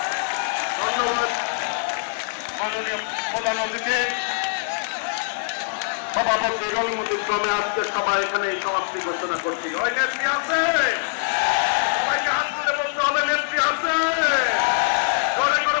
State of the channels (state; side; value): silent; right; digital silence